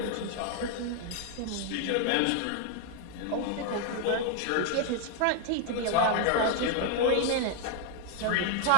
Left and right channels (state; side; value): different; both; correlation 0.00